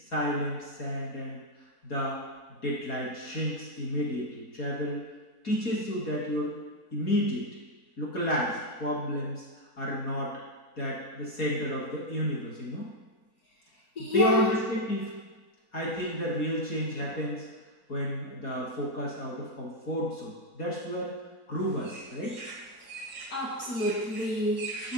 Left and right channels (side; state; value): right; late; 4.2 ms